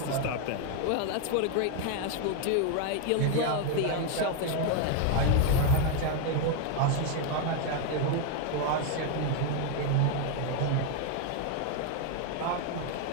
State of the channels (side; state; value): both; different; correlation 0.01